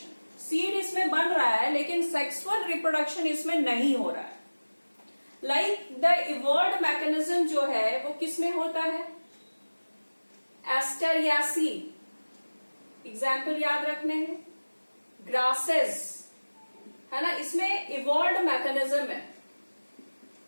Seed इसमें बन रहा है लेकिन सेक्सुअल रिप्रोडक्शन इसमें नहीं हो रहा है। लाइक द इवॉल्व्ड मैकेनिज्म जो है वो किसमें होता है? एस्टेरियासी, एग्जाम्पल याद रखने हैं। ग्रासेस है ना, इसमें इवॉल्व्ड मैकेनिज्म है,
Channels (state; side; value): inverted; both; correlation -1.00